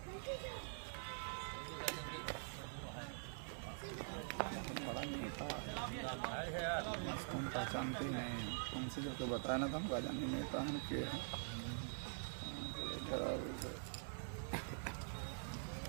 बहुत बड़ा नेता है, हम पहचानते ही नहीं हैं। उनसे जो तो बताया ना, तो हम जाने नेता हैं के हैं।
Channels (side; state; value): left; silent; digital silence